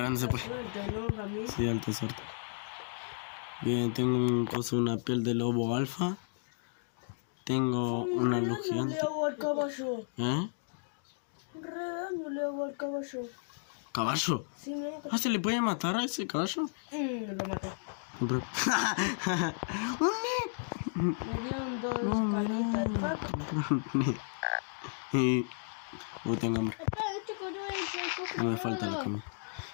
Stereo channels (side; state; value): right; silent; digital silence